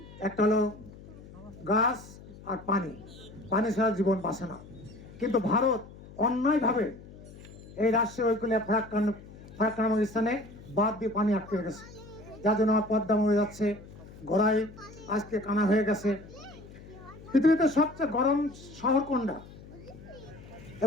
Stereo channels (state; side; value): noise; left; hum, 18 dB below the sound